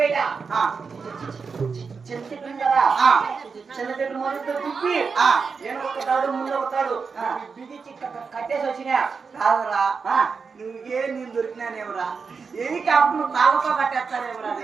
చిన్న చెట్టు కదా, చిన్న చెట్టు మొదలు తిప్పి నేను ఒకతాడు ముందు ఒకతాడు బిగించి కట్టేసి వచ్చినా. కాదురా, నువ్వే నేను దొరికినానేవరా? హెలికాప్టర్ తాళ్ళతో కట్టేస్తానేవరా?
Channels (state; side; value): quieter; left; 5.3 dB